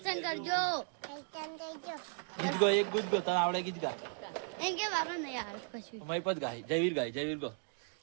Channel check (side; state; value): left; silent; 54 dB below the other